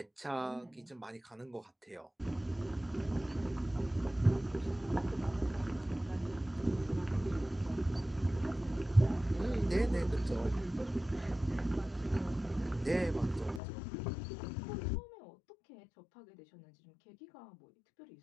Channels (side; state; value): right; drops out; at 13.6 s